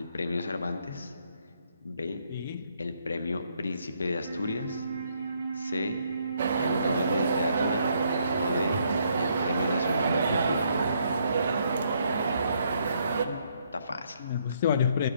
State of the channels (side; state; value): both; inverted; correlation -0.71